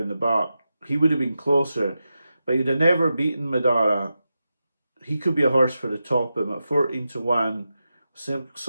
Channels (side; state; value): both; inverted; correlation -0.90